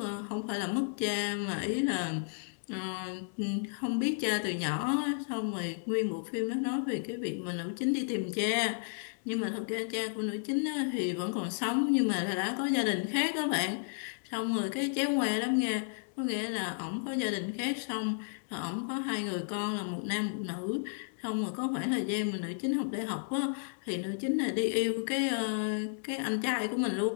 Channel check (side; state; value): right; silent; digital silence